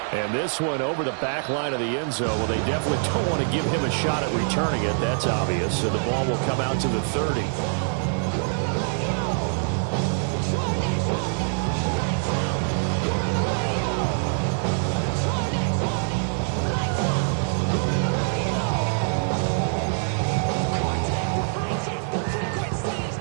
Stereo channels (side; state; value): left; silent; 58 dB below the other